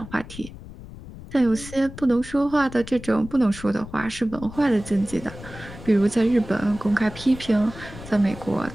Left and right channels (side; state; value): left; noise; rumble, 15 dB below the sound